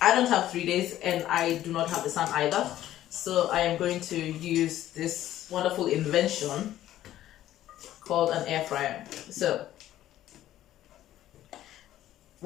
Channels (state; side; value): quieter; right; 13.2 dB